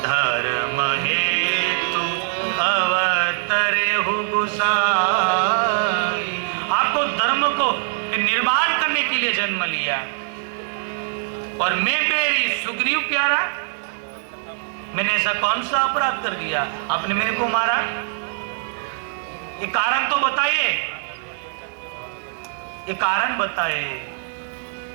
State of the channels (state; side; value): silent; left; 64 dB below the other